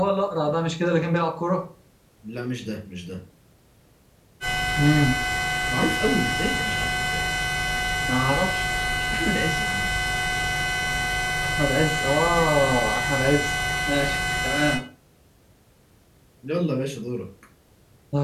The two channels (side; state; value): both; identical; correlation 1.00